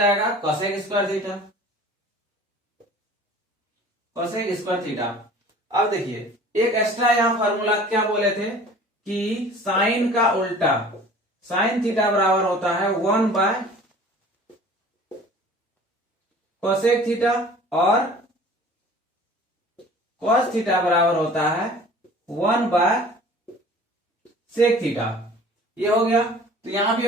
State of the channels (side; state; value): both; normal; correlation 0.46